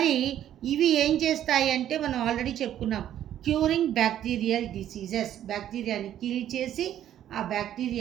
ఇవి ఏం చేస్తాయి అంటే మనం ఆల్రెడీ చెప్పుకున్నాం, క్యూరింగ్ బ్యాక్టీరియల్ డిసీజెస్. బ్యాక్టీరియాని కిల్ చేసి ఆ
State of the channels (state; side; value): quieter; left; 11.2 dB